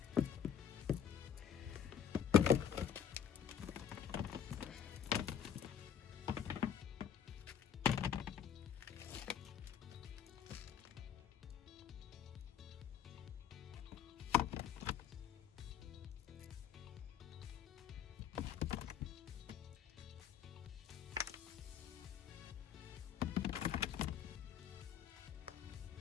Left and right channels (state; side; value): quieter; right; 8.7 dB